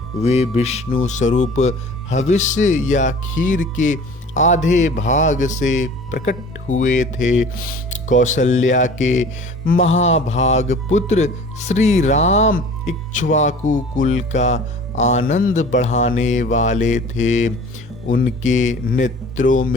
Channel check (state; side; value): normal; both; correlation 0.44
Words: वे विष्णु स्वरूप हविष्य या खीर के आधे भाग से प्रकट हुए थे। कौशल्या के महाभाग पुत्र श्री राम इक्ष्वाकु कुल का आनंद बढ़ाने वाले थे। उनके नेत्रों